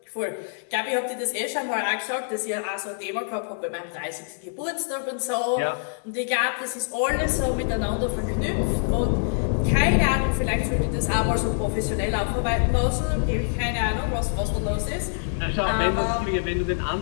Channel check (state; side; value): silent; right; digital silence